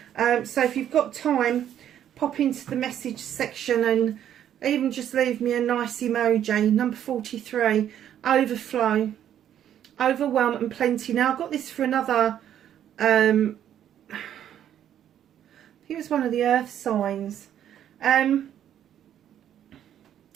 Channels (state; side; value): quieter; left; 10.3 dB